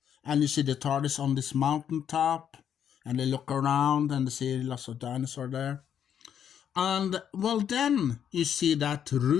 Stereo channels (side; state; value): right; quieter; 8.9 dB